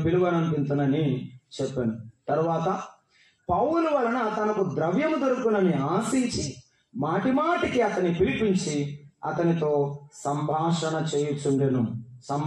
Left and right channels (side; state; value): both; identical; correlation 1.00